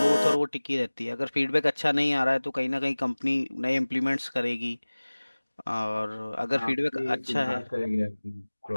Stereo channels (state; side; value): inverted; both; correlation -1.00